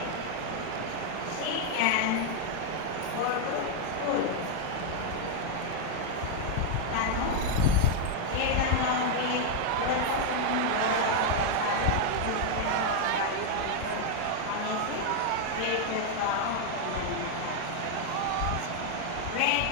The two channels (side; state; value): both; different; correlation 0.00